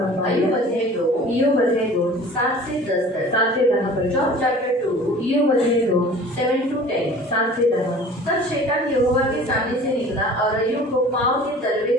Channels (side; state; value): both; normal; correlation 0.45